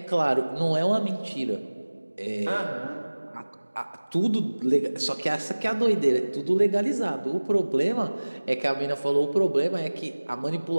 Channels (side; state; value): both; inverted; correlation -1.00